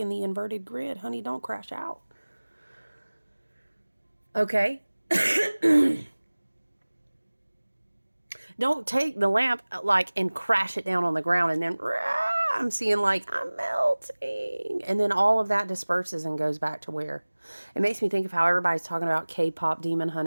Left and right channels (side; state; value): both; inverted; correlation -1.00